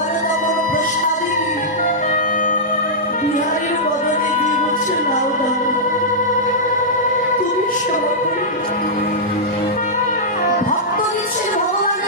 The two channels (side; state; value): both; normal; correlation -0.12